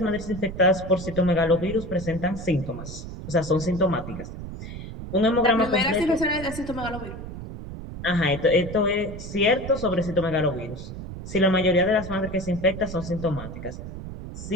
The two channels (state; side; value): noise; right; rumble, 10 dB below the sound